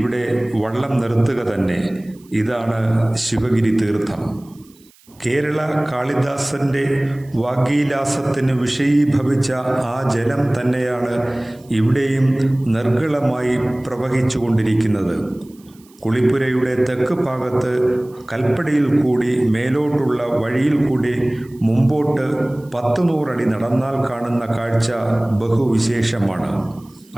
വള്ളം നിർത്തുക തന്നെ. ഇതാണ് ശിവഗിരി തീർത്ഥം. കേരള കാളിദാസന്റെ വാഗ്വിലാസത്തിന് വിഷയീഭവിച്ച ആ ജലം തന്നെയാണ് ഇവിടെയും നിർഗളമായി പ്രവഹിച്ചുകൊണ്ടിരിക്കുന്നത്. കുളിപ്പുരയുടെ തെക്ക് ഭാഗത്ത് കൽപ്പടിയിൽ കൂടി മേലോട്ടുള്ള വഴിയിൽ കൂടി മുമ്പോട്ട് 100 അടി നടന്നാൽ കാണുന്ന കാഴ്ച ബഹുവിശേഷമാണ്.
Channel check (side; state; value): right; noise; hiss, 29 dB below the sound